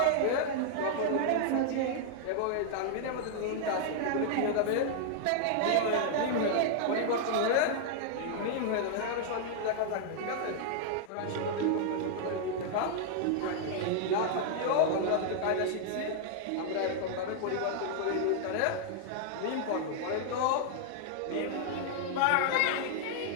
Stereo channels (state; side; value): different; both; correlation -0.01